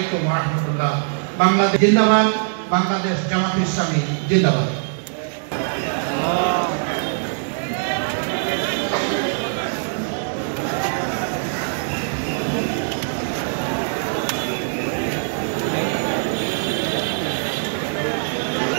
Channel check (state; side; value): silent; left; digital silence